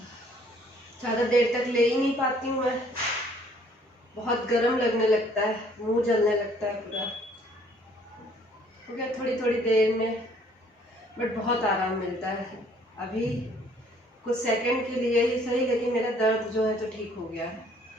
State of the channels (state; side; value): normal; both; correlation 0.60